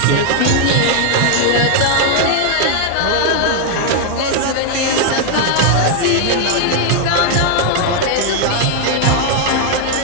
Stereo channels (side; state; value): both; different; correlation 0.00